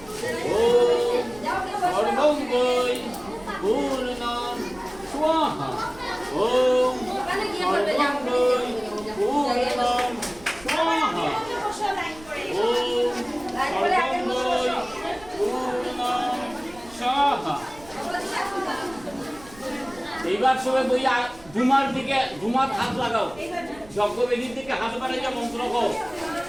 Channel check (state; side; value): noise; right; rumble, 22 dB below the sound